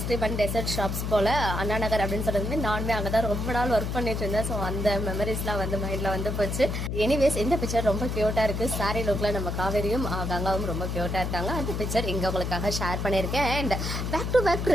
அண்ட் டெசர்ட் ஷாப்ஸ் போல் அண்ணா நகர் அப்படின்னு சொல்றது நானுமே அங்கே தான் ரொம்ப நாள் ஒர்க் பண்ணிட்டு இருந்தேன். ஸோ அந்த மெமரிஸ்லாம் வந்து மைண்டில் வந்து போச்சு. எனிவேஸ் இந்த பிக்சர் ரொம்ப க்யூட்டாக இருக்குது. சாரி லுக்கில் நம்ம காவேரியும் கங்காவும் ரொம்ப க்யூட்டாக இருக்காங்க. அந்த பிக்சர் இங்கே உங்களுக்காக ஷேர் பண்ணியிருக்கேன். அண்ட் பேக் டு பேக்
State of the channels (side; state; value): left; noise; hum, 2 dB below the sound